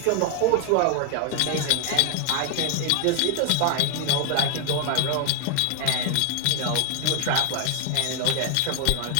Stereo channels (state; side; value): different; both; correlation 0.00